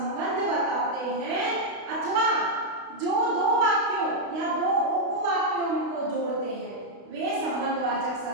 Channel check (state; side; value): late; left; 32 ms